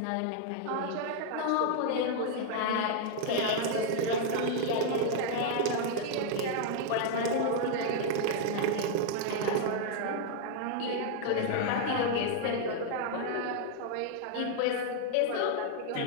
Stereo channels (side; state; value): both; different; correlation 0.00